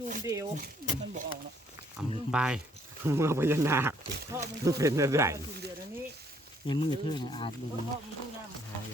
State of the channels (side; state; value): both; normal; correlation 0.66